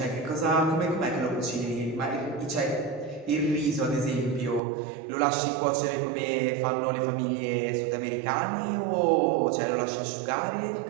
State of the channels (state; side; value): drops out; left; at 4.6 s